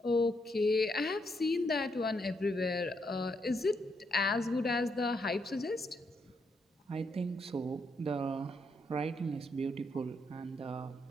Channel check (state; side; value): normal; both; correlation 0.77